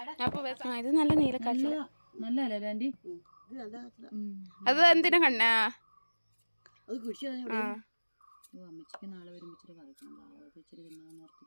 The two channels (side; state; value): both; inverted; correlation -1.00